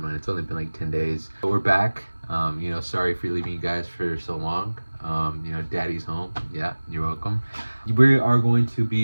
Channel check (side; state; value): both; inverted; correlation -1.00